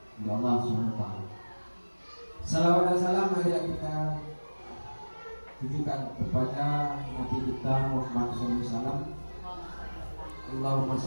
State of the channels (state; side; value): inverted; both; correlation -1.00